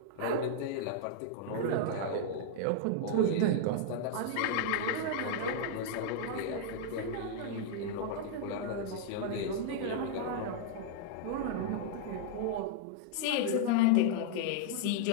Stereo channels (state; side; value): different; both; correlation -0.01